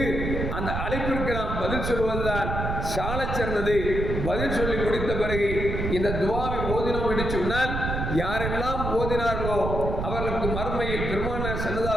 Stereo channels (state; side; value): noise; right; rumble, 3 dB below the sound